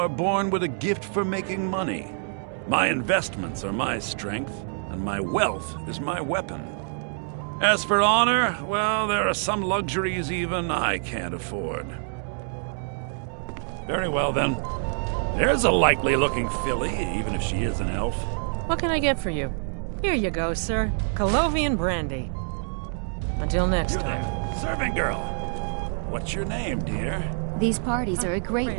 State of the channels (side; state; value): left; silent; 61 dB below the other